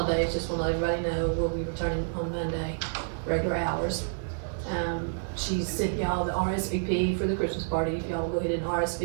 Just want to let everybody know we'll be returning on Monday, regular hours. She sent y'all the RSVP for the Christmas party. If y'all will go ahead and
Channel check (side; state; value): left; silent; digital silence